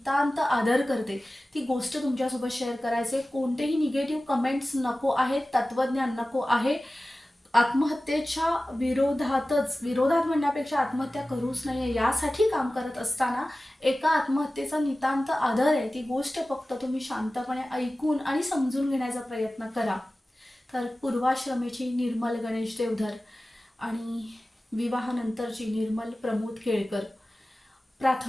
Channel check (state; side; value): normal; both; correlation 0.96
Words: आदर करते, ती गोष्ट तुमच्यासोबत शेअर करायचे. कोणतेही निगेटिव्ह कमेंट्स नको आहेत, तत्वज्ञान नको आहे. आत्महत्येच्या विरोधात म्हणण्यापेक्षा आत्महत्या करूच नये यासाठी काम करत असताना एका आत्महत्येचा नितांत आदर आहे. ती गोष्ट फक्त तुम्ही शांतपणे ऐकून आणि समजून घेण्याचा प्रयत्न करा. तर पूर्वाश्रमेची निर्मल गणेश देवधर आणि विवाहानंतरची निर्मल प्रमोद केळकर,